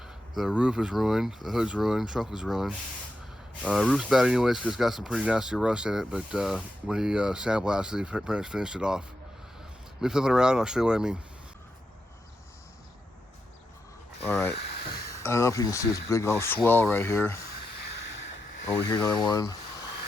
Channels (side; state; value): both; normal; correlation 0.86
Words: The roof is ruined, the hood's ruined, trunk was ruined. Roof's bad anyways because it's got some pretty nasty rust in it, but when he sandblasted, he pretty much finished it off. Let me flip it around and I'll show you what I mean. Alright, I don't know if you can see this big old swell right here. Over here, another one.